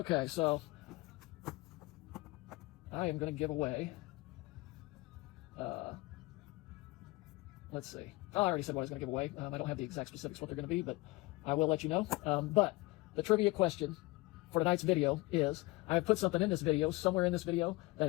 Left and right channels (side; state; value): right; quieter; 22.2 dB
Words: so I am going to give away. Let's see. Oh, I already said what I was going to give away. I don't have the exact specifics what they're going to be, but I will let you know. But the trivia question for tonight's video is, I have put something in this video, somewhere in this video, that